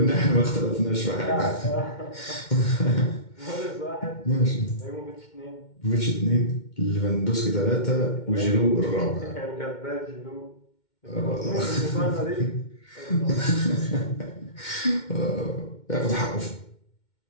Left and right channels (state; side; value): late; right; 2.1 ms